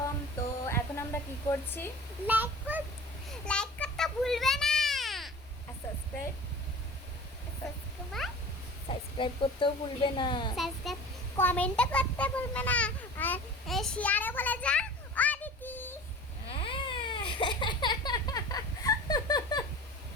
তো এখন আমরা কি করছি? লাইক করতে ভুলবে না আর সাবস্ক্রাইব করতেও ভুলবে না। সাবস্ক্রাইব কমেন্ট করতে ভুলবে না আর শেয়ারে বলে যা অদিতি।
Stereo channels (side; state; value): both; normal; correlation 0.40